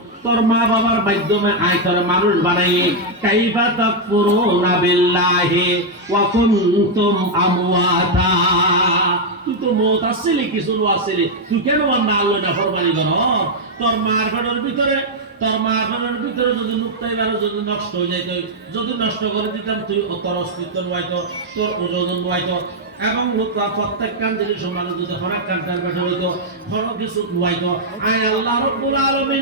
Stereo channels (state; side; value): normal; both; correlation -0.01